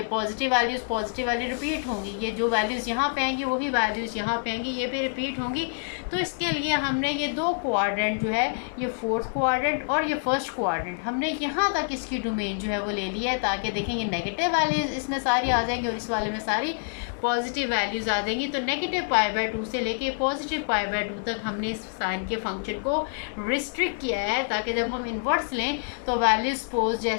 पॉजिटिव वैल्यू रिपीट होंगी, ये जो वैल्यूज़ यहाँ पे आएंगी वही वैल्यूज़ यहाँ पे आएंगी, ये भी रिपीट होंगी। तो इसके लिए हमने ये 2 क्वाड्रेंट जो है, ये 4th क्वाड्रेंट और ये 1st क्वाड्रेंट, हमने यहाँ तक इसकी डोमेन जो है वो ले लिया है ताकि देखें ये नेगेटिव वैल्यूज़ इसमें सारी आ जाएंगी और इस वाले में सारी पॉजिटिव वैल्यूज़ आ जाएंगी। तो नेगेटिव पाई बाय 2 से लेके पॉजिटिव पाई बाय 2 तक हमने इस साइन के फंक्शन को रिस्ट्रिक्ट किया है ताकि जब हम इन्वर्स लें तो वैल्यू सपोज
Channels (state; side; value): silent; right; 60 dB below the other